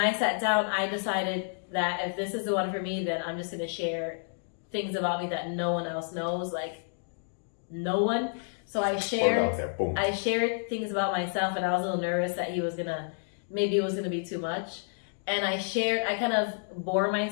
sat down, I decided that if this is the one for me, then I'm just going to share things about me that no one else knows, no one. So I shared things about myself, and I was a little nervous that maybe it was going to be too much. And I kind of bore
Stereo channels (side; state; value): right; silent; digital silence